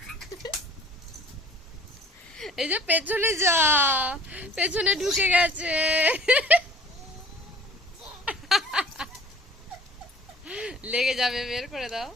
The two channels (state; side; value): normal; both; correlation 0.49